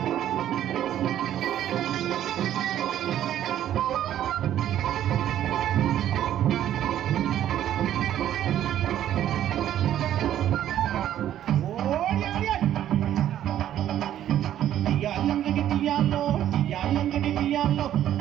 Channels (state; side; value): quieter; left; 11.5 dB